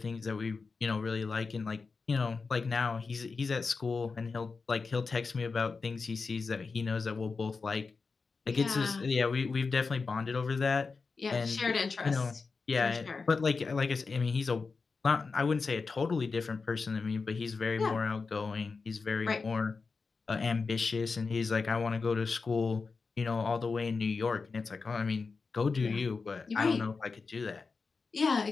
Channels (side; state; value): right; quieter; 4.5 dB